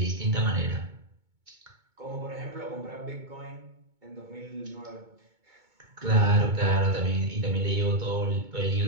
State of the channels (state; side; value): late; left; 2.2 ms